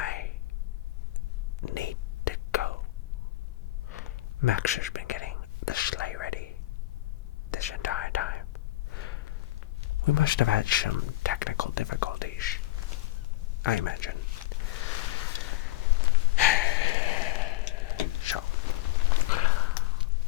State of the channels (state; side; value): quieter; right; 17.4 dB